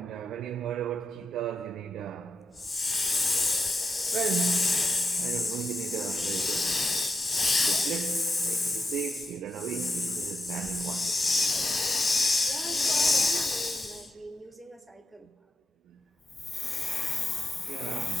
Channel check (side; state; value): both; normal; correlation 0.85